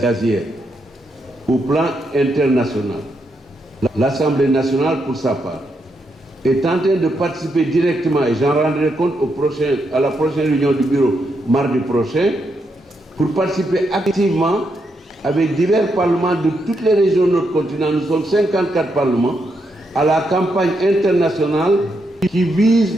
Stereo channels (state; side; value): normal; both; correlation 0.81